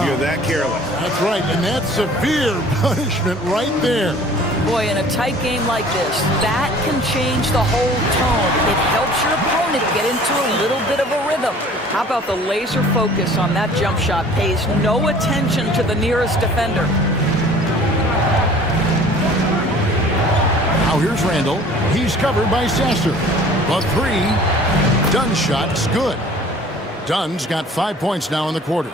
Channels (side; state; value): both; normal; correlation 0.49